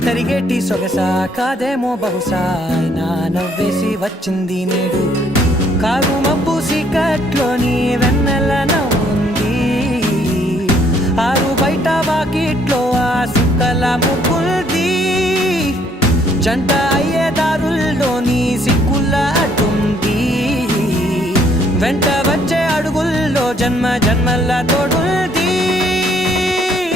తరిగేటి సొగస కాదేమో బహుశా అయినా నవ్వేసి వచ్చింది నేడు కారు మబ్బు సీకట్లోని వెన్నెల నవ్వుంది ఆరు బయట వాకిట్లో ఆ సుక్కల ముగ్గుల్ది జంట అయ్యే దారుల్లోని సిక్కుల అడ్డుంది వెంట వచ్చే అడుగుల్లో జన్మ జన్మల తోడుంది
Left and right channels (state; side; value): normal; both; correlation 0.66